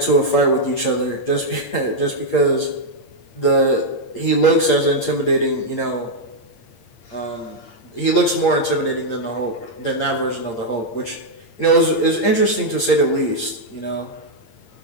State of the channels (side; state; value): right; late; 8.7 ms